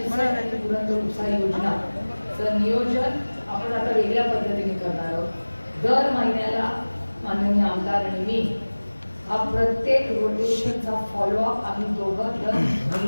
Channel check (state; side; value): inverted; both; correlation -1.00